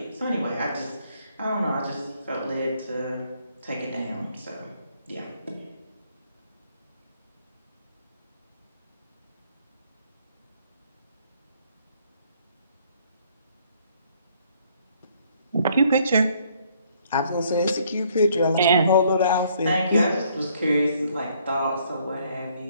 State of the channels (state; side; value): inverted; both; correlation -0.65